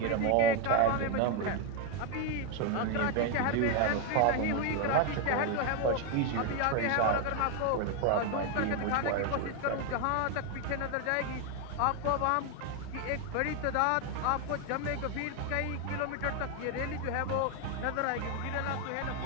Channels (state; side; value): different; both; correlation 0.01